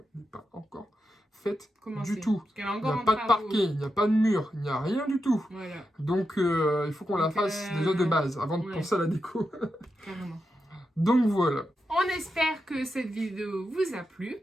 n'est pas encore faite du tout. Il n'y a pas de parquet, il n'y a pas de mur, il n'y a rien du tout. Voilà. Donc il faut qu'on la fasse déjà de base avant de penser à la déco. Carrément. Donc voilà. On espère que cette vidéo vous a plu,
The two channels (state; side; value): normal; both; correlation 0.88